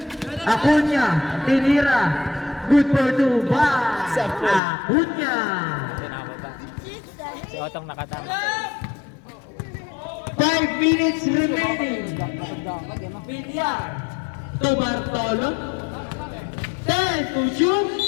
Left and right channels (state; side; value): drops out; right; at 4.6 s